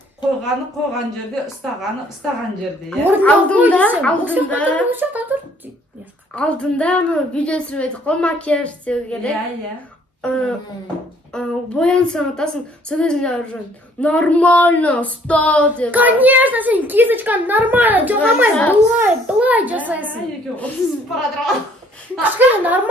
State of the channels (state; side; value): normal; both; correlation 0.61